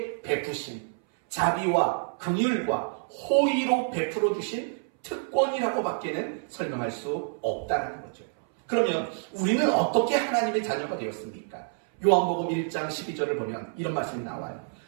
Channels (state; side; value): silent; left; 59 dB below the other